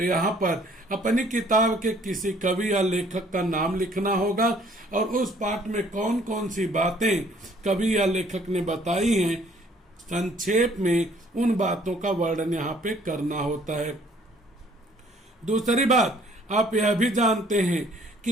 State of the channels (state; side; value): normal; both; correlation 0.59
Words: यहाँ पर अपनी किताब के किसी कवि या लेखक का नाम लिखना होगा और उस पाठ में कौन कौन सी बातें कवि या लेखक ने बताई हैं, संक्षेप में उन बातों का वर्णन यहाँ पे करना होता है। दूसरी बात, आप यह भी जानते हैं